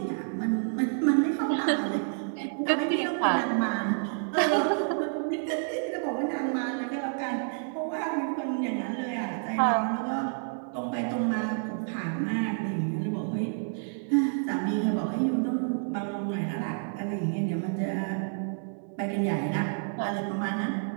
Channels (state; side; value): silent; left; digital silence